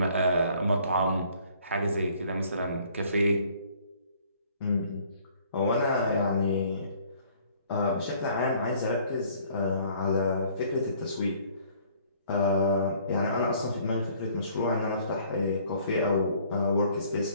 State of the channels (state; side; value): inverted; both; correlation -0.58